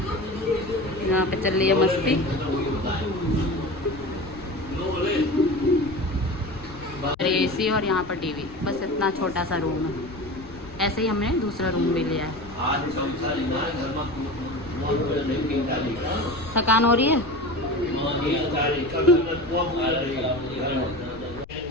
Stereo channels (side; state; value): left; noise; rumble, 20 dB below the sound